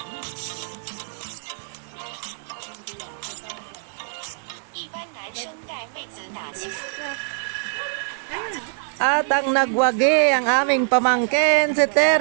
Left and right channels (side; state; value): left; silent; digital silence